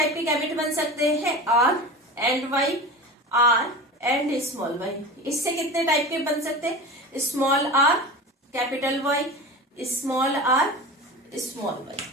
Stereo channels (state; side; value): normal; both; correlation 0.31